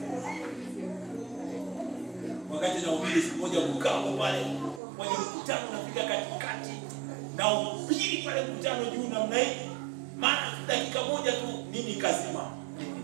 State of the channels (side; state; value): left; drops out; at 4.8 s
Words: Wakati na ubiri siku moja mkao pale, kwenye mkutano unafika katikati na ubiri pale mkutano juu namna hii. Maana dakika moja tu nini kazima.